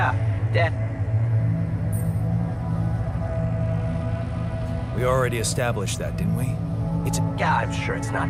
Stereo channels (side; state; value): both; identical; correlation 1.00